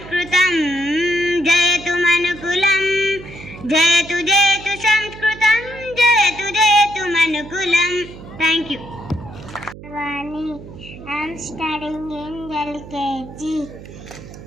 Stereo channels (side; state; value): right; noise; hum, 15 dB below the sound